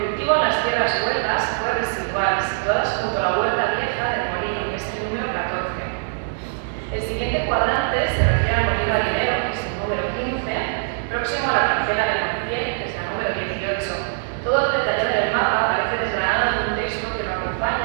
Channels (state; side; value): silent; left; digital silence